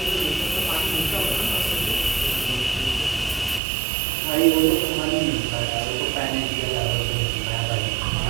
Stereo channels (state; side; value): drops out; left; at 3.6 s